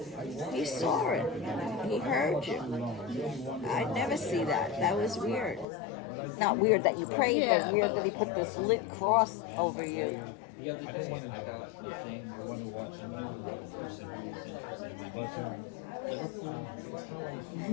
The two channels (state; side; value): drops out; right; at 5.7 s